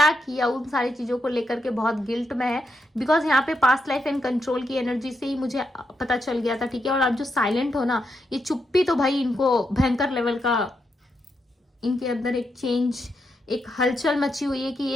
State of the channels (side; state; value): both; normal; correlation 0.83